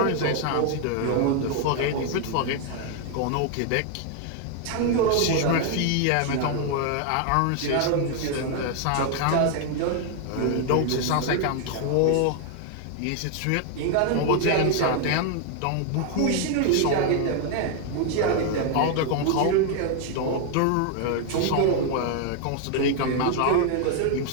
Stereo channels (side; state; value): both; different; correlation 0.00